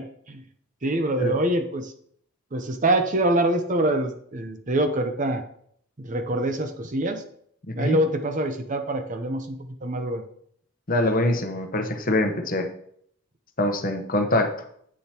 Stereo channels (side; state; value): both; normal; correlation 0.27